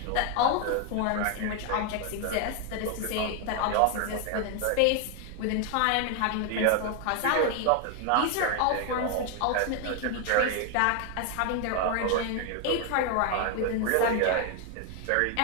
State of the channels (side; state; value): both; different; correlation 0.01